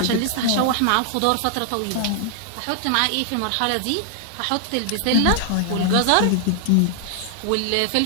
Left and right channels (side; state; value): both; different; correlation 0.00